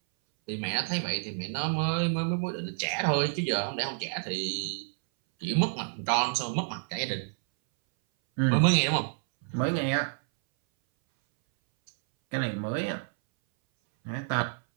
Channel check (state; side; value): silent; left; 59 dB below the other